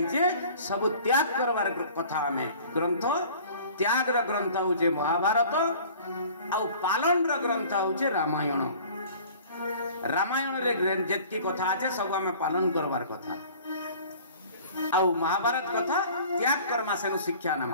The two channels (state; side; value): inverted; both; correlation -0.47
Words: छे सब त्याग करवार कथा में ग्रंथ त्याग र ग्रंथ होचे महाभारत आ पालन र ग्रंथ होचे रामायण रामायण रे जेतकी कथा आछे सब हमें पालन करवार कथा आ महाभारत कथा त्याग करमा सेनु शिक्षा न